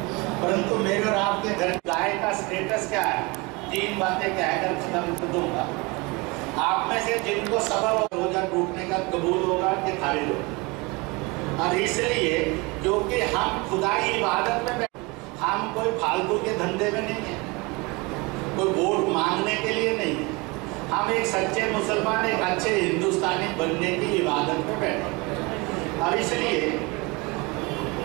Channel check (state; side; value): quieter; left; 26.2 dB